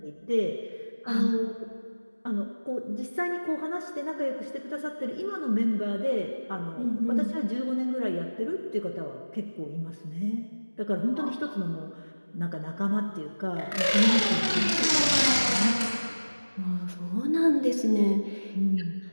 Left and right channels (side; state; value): both; inverted; correlation -1.00